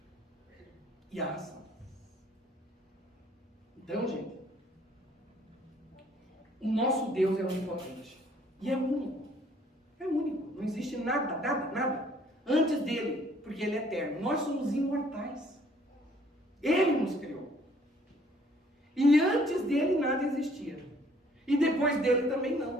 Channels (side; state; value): both; normal; correlation 0.60